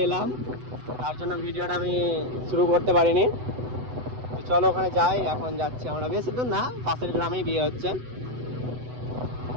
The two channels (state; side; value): late; left; 8.0 ms